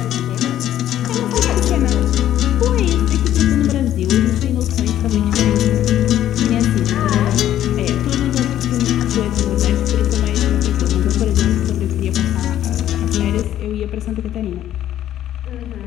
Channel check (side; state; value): right; quieter; 12.0 dB